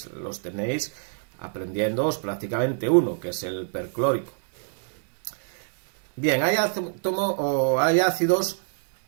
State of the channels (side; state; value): left; silent; digital silence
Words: los tenéis aprendiéndoos prácticamente uno, que es el perclórico. Bien, hay ácidos